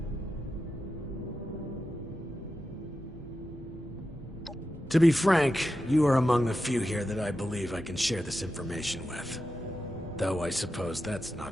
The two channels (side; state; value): both; normal; correlation 0.90